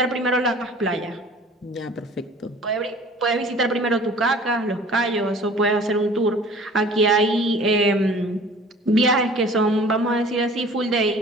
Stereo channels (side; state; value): both; normal; correlation 0.47